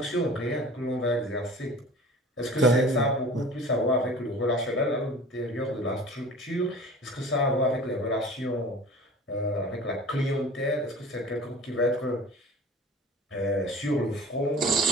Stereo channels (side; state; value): both; normal; correlation 0.42